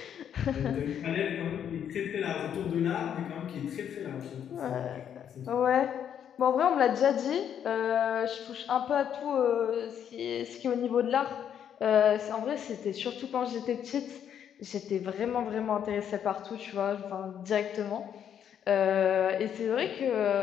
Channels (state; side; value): quieter; right; 9.0 dB